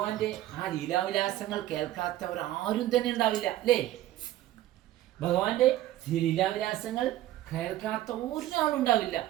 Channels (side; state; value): left; quieter; 14.1 dB